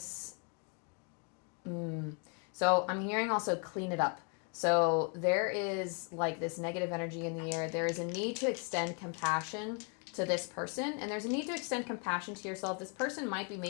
So I'm hearing also clean it up. So there is like this negative energy in the air. There is a need to extend compassion to this person, and there's a need to extend compassion to yourself. This person might be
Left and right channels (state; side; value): quieter; right; 35.7 dB